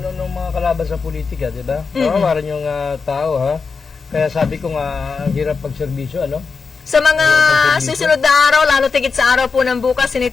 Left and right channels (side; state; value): right; quieter; 5.0 dB